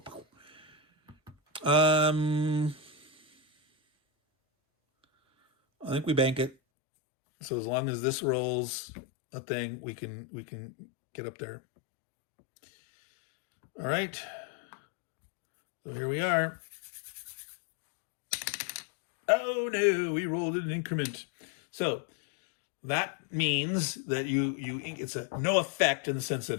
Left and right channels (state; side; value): drops out; right; at 6.6 s